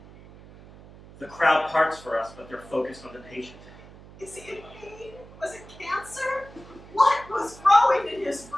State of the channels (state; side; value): noise; right; hum, 20 dB below the sound